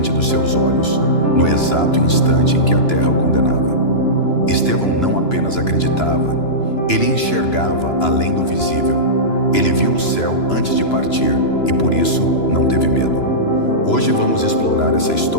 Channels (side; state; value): right; late; 2.9 ms